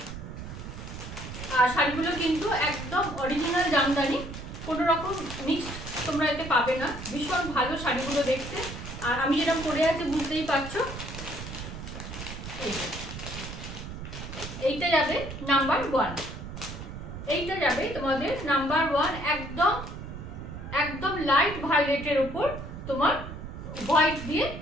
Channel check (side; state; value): right; noise; rumble, 9 dB below the sound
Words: আর শাড়িগুলো কিন্তু একদম অরিজিনাল জামদানি, কোনো রকম মিক্সড তোমরা এতে পাবে না। ভীষণ ভালো শাড়িগুলো দেখতে। আর আমি যেরকম পরে আছি বুঝতেই পারছো। এইটা যাবে নাম্বার 1, এইটা যাবে তোমাদের নাম্বার 1, একদম একদম লাইট ভায়োলেটের উপর তোমার হোয়াইট দিয়ে